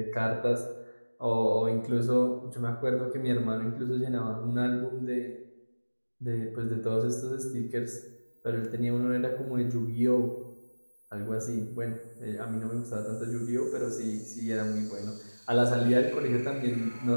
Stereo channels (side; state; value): both; inverted; correlation -1.00